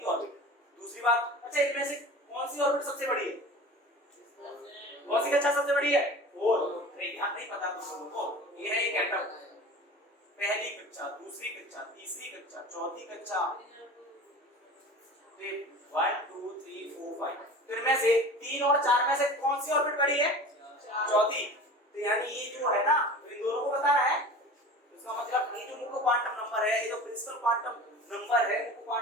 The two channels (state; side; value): normal; both; correlation 0.38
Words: ऑर्बिट। दूसरी बात, अच्छा इनमें से कौन सी ऑर्बिट सबसे बड़ी है? कौन सी कक्षा सबसे बड़ी है? 4। यहाँ नहीं पता तुम लोगों को, ये है एक एटम, पहली कक्षा, दूसरी कक्षा, तीसरी कक्षा, चौथी कक्षा, 1 2 3 4 5। तो इनमें से 3 और 4 में से कौन सी ऑर्बिट बड़ी है? चौथी। तो यानी ये जो है ना, इन दोनों को बता रहा है। इसका मतलब ये जो मुख्य क्वांटम नंबर है, ये जो प्रिंसिपल क्वांटम नंबर है, मुख्य